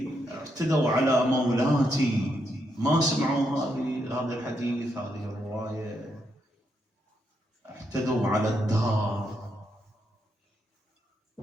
اعتدوا على مولاتي ما سمعوا هذا الحديث، هذه الرواية. اعتدوا على الدار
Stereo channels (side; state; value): both; normal; correlation 0.79